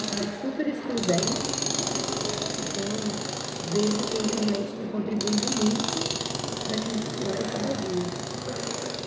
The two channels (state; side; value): identical; both; correlation 1.00